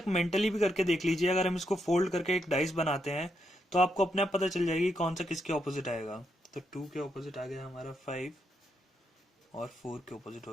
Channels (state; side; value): normal; both; correlation 0.80